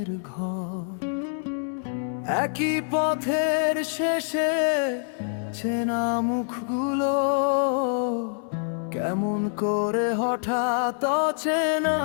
ঘর। একই পথের শেষে চেনা মুখগুলো কেমন করে হঠাৎ অচেনা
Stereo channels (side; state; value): right; silent; 61 dB below the other